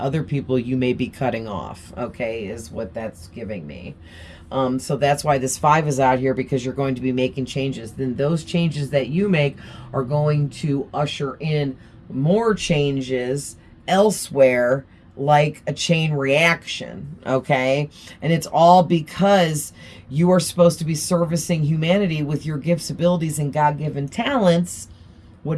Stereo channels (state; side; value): identical; both; correlation 1.00